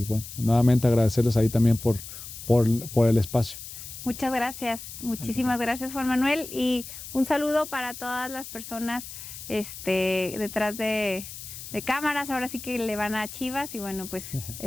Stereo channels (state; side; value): noise; left; hiss, 12 dB below the sound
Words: bueno, nuevamente agradecerles ahí también por el espacio. Muchas gracias, muchísimas gracias, Juan Manuel, y un saludo para todas las personas detrás de cámaras. Ahora sí que le van a Chivas y bueno, pues